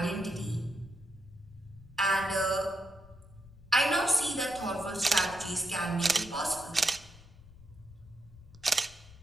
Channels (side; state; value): left; noise; rumble, 22 dB below the sound